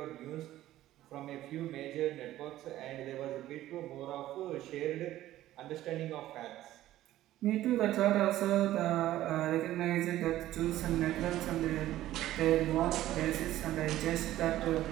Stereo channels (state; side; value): quieter; left; 14.3 dB